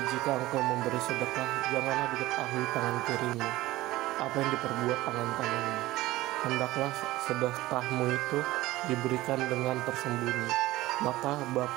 jika engkau memberi sedekah, janganlah diketahui tangan kirimu apa yang diperbuat tangan kananmu. Hendaklah sedekahmu itu diberikan dengan tersembunyi, maka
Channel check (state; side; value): quieter; left; 17.7 dB